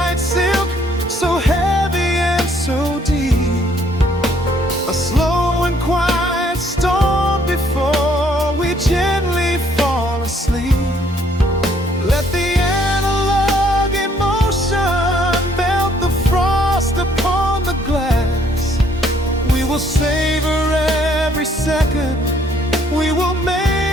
silk, so heavy and so deep. A slow and quiet storm before we gently fall asleep. Let the analog emotion melt the frost upon the glass. We will savor every second, we will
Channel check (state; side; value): normal; both; correlation 0.65